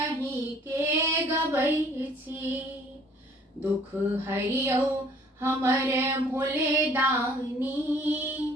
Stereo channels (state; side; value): normal; both; correlation 0.56